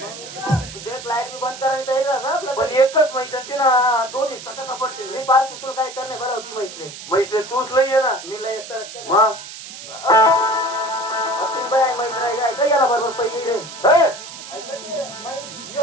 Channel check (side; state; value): right; noise; hiss, 13 dB below the sound